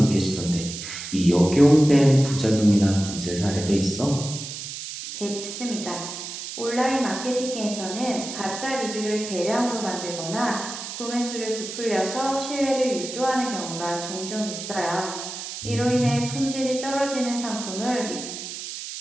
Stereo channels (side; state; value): right; noise; hiss, 8 dB below the sound